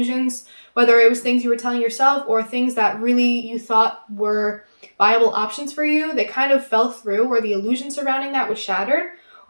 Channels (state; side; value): inverted; both; correlation -1.00